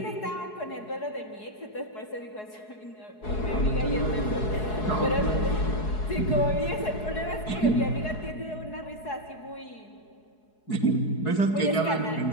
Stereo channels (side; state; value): right; late; 4.7 ms